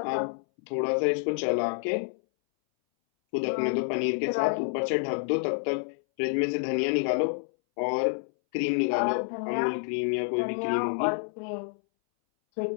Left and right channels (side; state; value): right; silent; 59 dB below the other